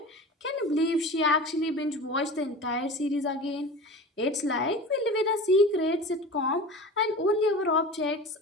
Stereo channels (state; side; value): normal; both; correlation 0.34